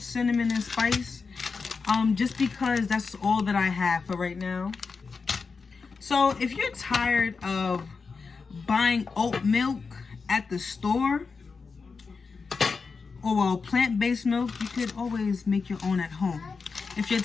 Cinnamon and Spice. Just because that's all that I have for right now. So if you're tired of buying oat milk at the store, or well, plant-based milk, you could always make your own at home. If you're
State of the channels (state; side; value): quieter; right; 4.9 dB